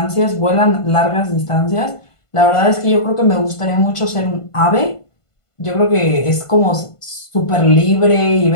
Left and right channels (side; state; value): right; late; 1.5 ms